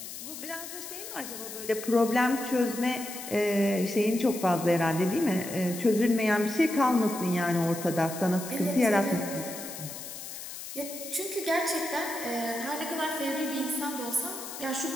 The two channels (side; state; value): left; noise; hiss, 10 dB below the sound